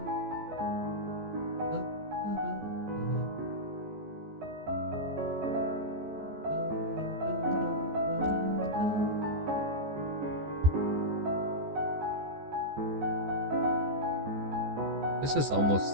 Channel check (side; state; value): left; late; 14 ms